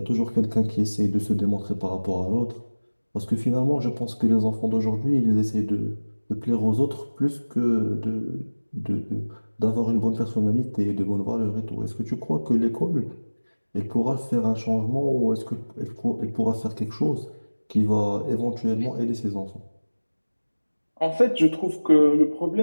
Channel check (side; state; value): both; inverted; correlation -1.00